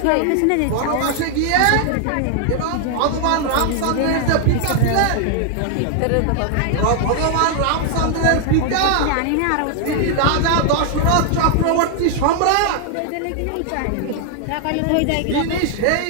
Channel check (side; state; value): both; different; correlation 0.00